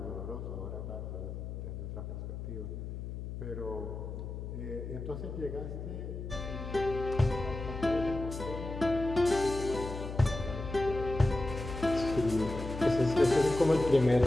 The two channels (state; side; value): noise; left; hum, 7 dB below the sound